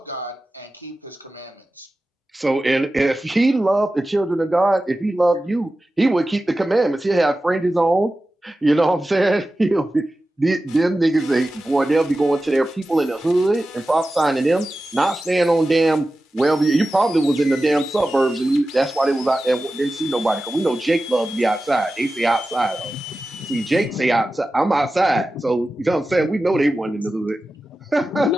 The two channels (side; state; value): both; normal; correlation 0.94